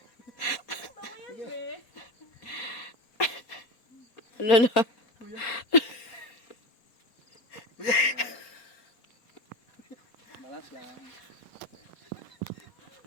Hello. Balance lang.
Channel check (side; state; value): right; late; 4.2 ms